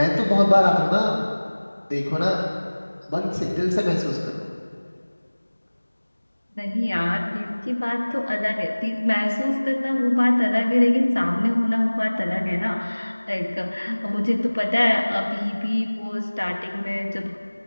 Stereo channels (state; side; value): inverted; both; correlation -1.00